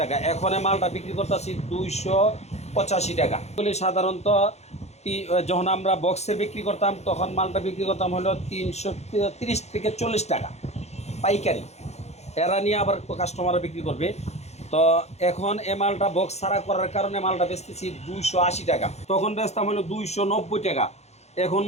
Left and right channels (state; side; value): late; right; 0.32 ms